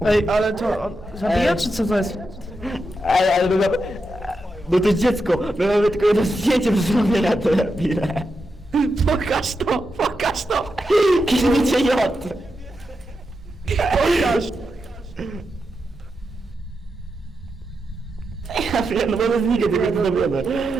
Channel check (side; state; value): both; normal; correlation 0.87